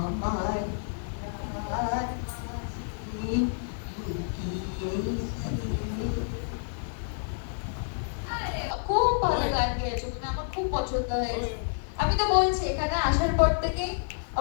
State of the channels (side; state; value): right; silent; digital silence